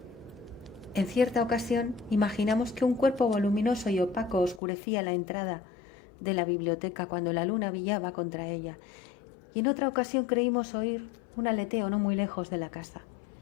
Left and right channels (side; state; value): right; drops out; at 4.6 s